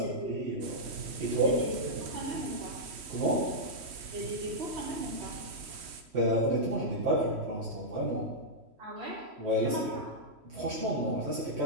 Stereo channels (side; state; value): left; late; 3.1 ms